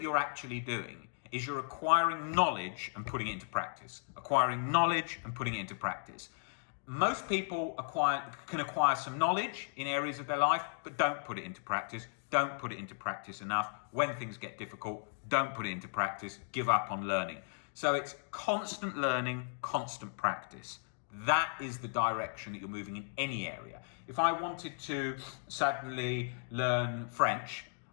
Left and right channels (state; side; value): silent; right; digital silence